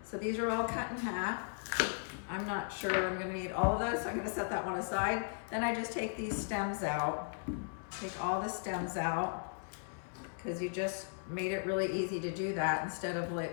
So these are all cut in half. I'm not sure I'm gonna need all of those, so I'm gonna set that one aside. Then I just take these stems out, take all the stems out, because you just made it really easy to do that instead of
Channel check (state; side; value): silent; right; 53 dB below the other